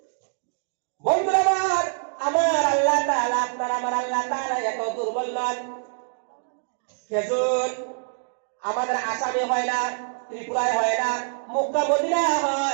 বন্ধুরা আমার আল্লাহ তাআলা, আপনার আমার আল্লাহ তাআলা এত দুর্বল নন। খেজুর আমাদের আসামে হয় না, ত্রিপুরায় হয় না, মক্কা মদিনা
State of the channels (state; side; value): silent; left; digital silence